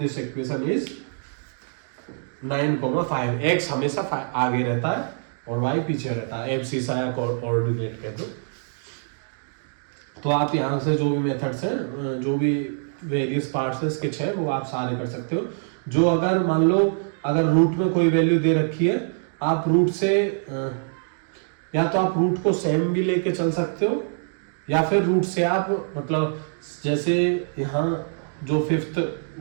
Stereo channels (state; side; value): silent; left; digital silence